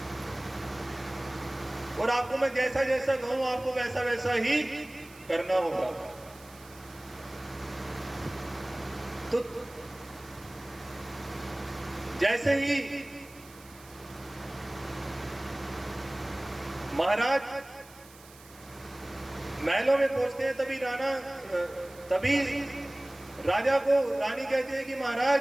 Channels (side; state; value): right; noise; hiss, 22 dB below the sound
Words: और आपको मैं जैसा जैसा कहूं आपको वैसा वैसा ही करना होगा। तो जैसे ही महाराज महलों में पहुंचते हैं तभी राजा को रानी कहती है कि